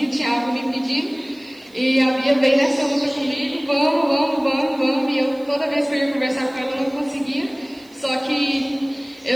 tinha algo me pedir. E a Bia veio nessa luta comigo, vamos, e eu toda vez que eu ia conversar com ela não conseguia. Só que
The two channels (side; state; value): right; noise; hiss, 29 dB below the sound